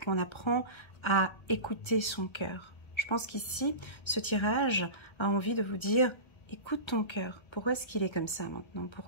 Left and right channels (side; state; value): right; late; 1.3 ms